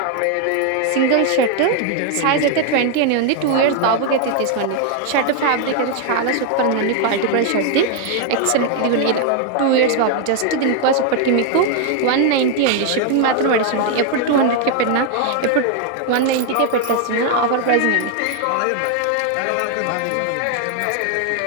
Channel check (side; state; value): both; different; correlation 0.00